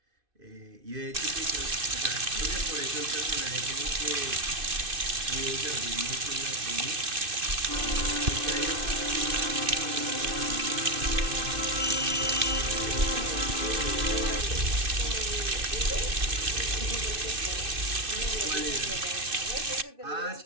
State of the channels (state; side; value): late; left; 2.6 ms